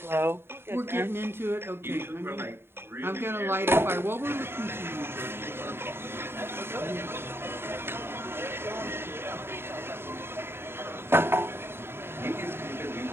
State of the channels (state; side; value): late; left; 0.11 ms